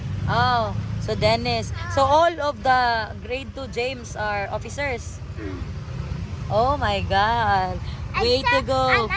Oh, so Dennis. So all of the grade 2 James are officers. Oh my God. Way to Except- go.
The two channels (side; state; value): both; identical; correlation 1.00